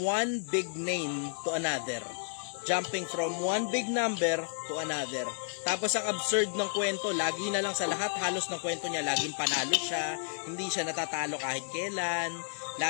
one big name to another. Jumping from one big number to another. Tapos ang absurd ng kwento, lagi na lang sa lahat halos ng kwento niya, laging panalo siya, hindi siya natatalo kahit kailan,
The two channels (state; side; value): silent; right; digital silence